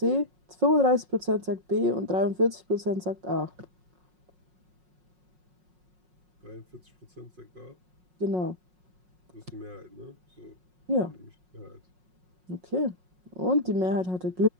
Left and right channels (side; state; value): left; late; 5.5 ms